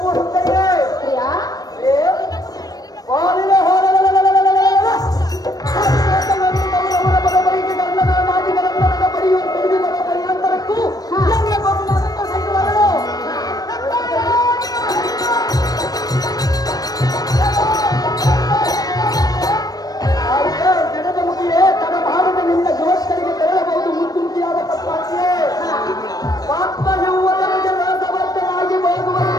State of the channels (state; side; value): late; right; 0.18 ms